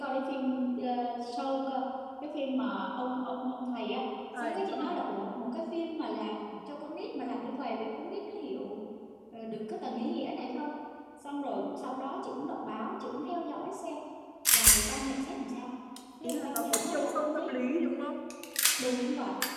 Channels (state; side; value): identical; both; correlation 1.00